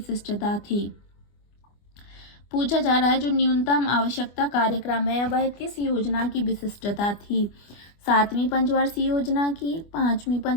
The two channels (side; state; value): right; late; 25 ms